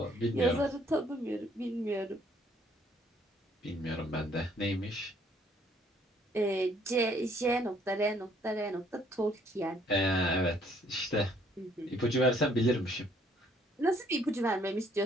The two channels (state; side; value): normal; both; correlation 0.64